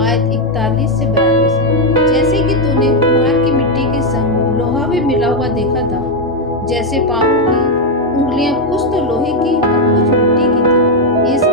आयत 41 से 42। जैसे कि तूने कुम्हार की मिट्टी के संग लोहा भी मिला हुआ देखा था, जैसे पांवों की उंगलियां कुछ तो लोहे की और कुछ मिट्टी की थी।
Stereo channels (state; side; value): normal; both; correlation 0.03